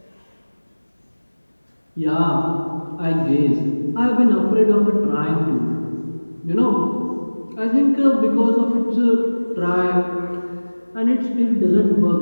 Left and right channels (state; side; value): inverted; both; correlation -1.00